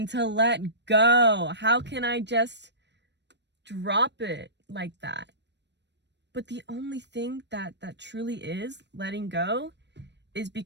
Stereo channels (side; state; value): left; late; 0.51 ms